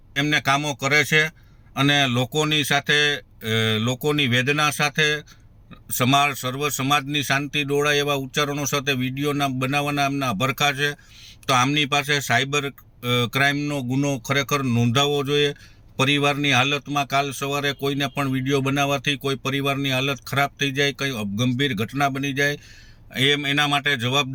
એમને કામો કરે છે અને લોકોની સાથે, લોકોની વેદના સાથે, સર્વ સમાજની શાંતિ ડોળાય એવા ઉચ્ચારણો સાથે વિડીયોના બનાવવાના એમના અભરખા છે। તો આમની પાસે સાયબર ક્રાઇમનો ગુનો ખરેખર નોંધાવવો જોઈએ। પરિવારની હાલતમાં કાલ સવારે કોઈને પણ વિડીયો બનાવવાથી કોઈ પરિવારની હાલત ખરાબ થઈ જાય, કંઈ ગંભીર ઘટના બની જાય, એના માટે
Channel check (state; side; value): identical; both; correlation 1.00